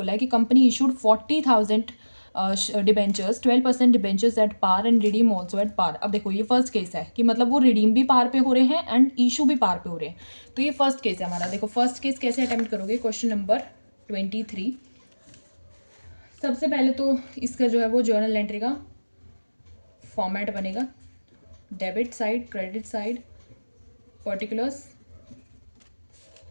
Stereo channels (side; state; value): both; inverted; correlation -1.00